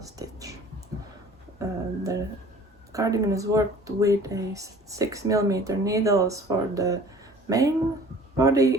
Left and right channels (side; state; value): both; normal; correlation 0.48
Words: stitch. The cardigan is worked with a 6mm needles for the main